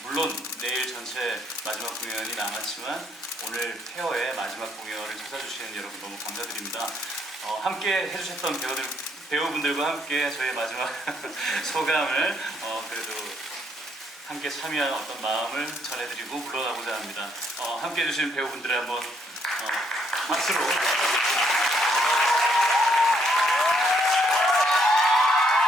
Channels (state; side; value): normal; both; correlation 0.71